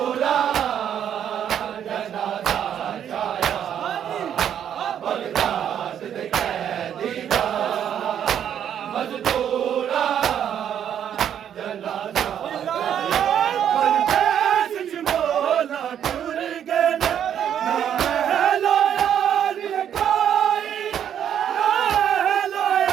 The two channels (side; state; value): left; quieter; 9.4 dB